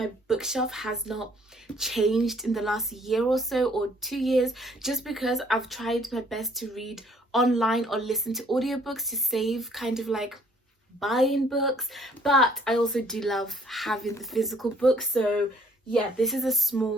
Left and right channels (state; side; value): normal; both; correlation 0.61